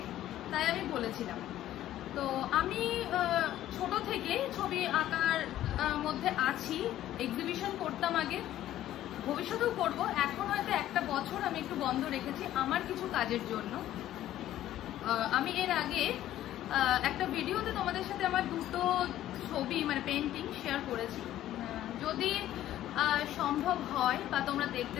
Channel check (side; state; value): right; quieter; 13.1 dB